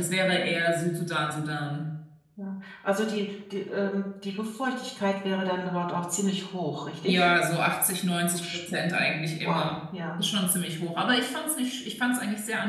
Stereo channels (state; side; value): identical; both; correlation 1.00